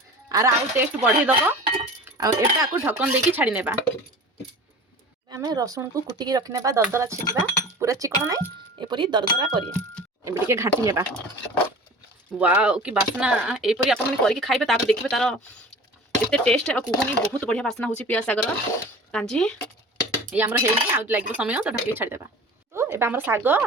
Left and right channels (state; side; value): normal; both; correlation 0.39